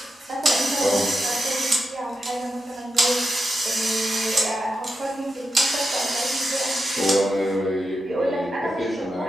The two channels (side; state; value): both; normal; correlation 0.88